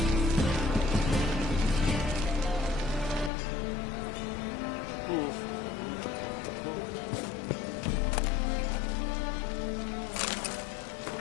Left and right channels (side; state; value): right; drops out; at 3.3 s